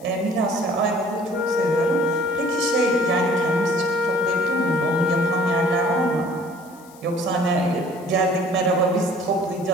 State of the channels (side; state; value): left; noise; hiss, 25 dB below the sound